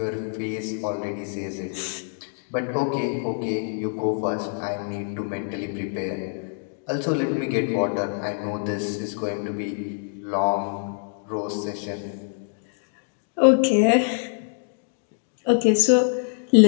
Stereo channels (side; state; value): right; silent; digital silence